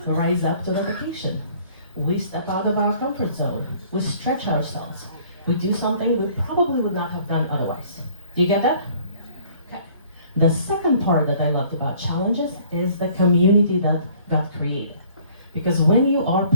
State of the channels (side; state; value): both; inverted; correlation -0.56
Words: rise up to the occasion. We step out of our comfort zone. We stretch ourselves. We do something we probably would not have done otherwise. Do you get that? Okay. The second part that I loved about challenges is the community that got created. Because when you are